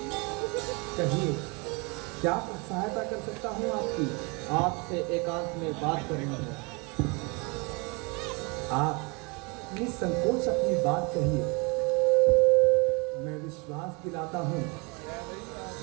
कहिए, क्या सहायता कर सकता हूँ आपकी? आपसे एकांत में बात करनी है। आप निसंकोच अपनी बात कहिए। मैं विश्वास दिलाता हूँ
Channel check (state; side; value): quieter; left; 29.9 dB